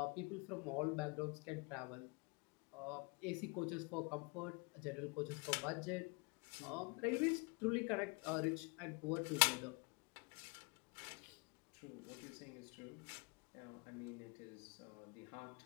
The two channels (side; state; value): right; quieter; 31.7 dB